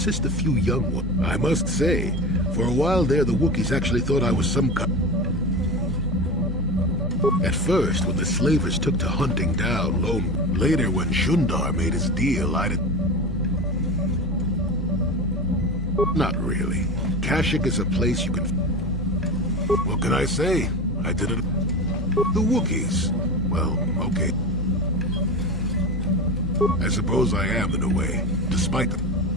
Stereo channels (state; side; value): normal; both; correlation 0.26